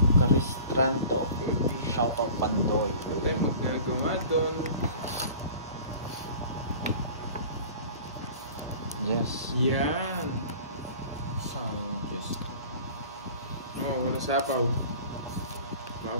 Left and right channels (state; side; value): inverted; both; correlation -0.43